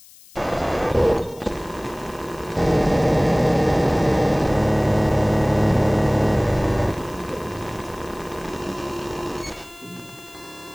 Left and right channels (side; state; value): left; noise; hiss, 23 dB below the sound